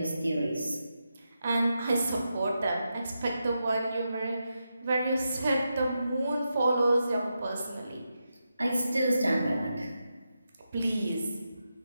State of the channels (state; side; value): inverted; both; correlation -0.87